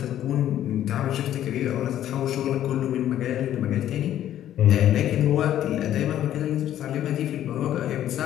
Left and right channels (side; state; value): right; quieter; 11.7 dB